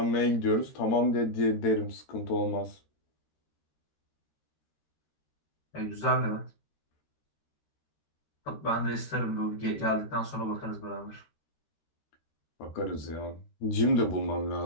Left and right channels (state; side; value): late; right; 13 ms